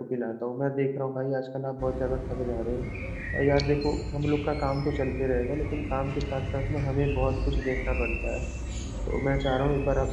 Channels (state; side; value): identical; both; correlation 1.00